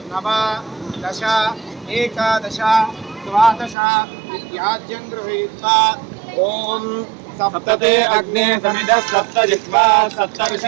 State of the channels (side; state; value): left; drops out; at 3.8 s